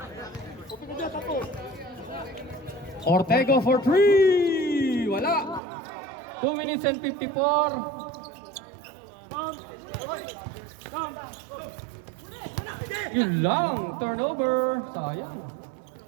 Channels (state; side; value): drops out; left; at 5.6 s